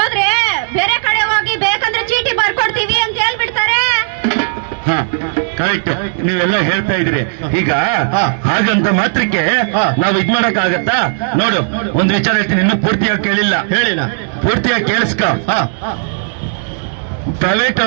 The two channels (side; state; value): left; silent; digital silence